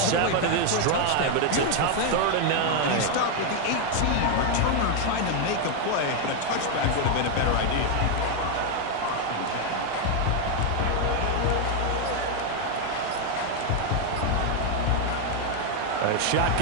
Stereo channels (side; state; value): both; different; correlation 0.01